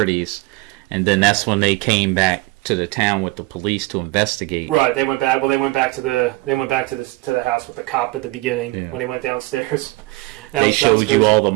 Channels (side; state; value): left; quieter; 22.1 dB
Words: and then that's when they came back to the town with the police to investigate. Right, they went back. Well, they went back to the house with the cop at the beginning when he went downstairs. They showed you all the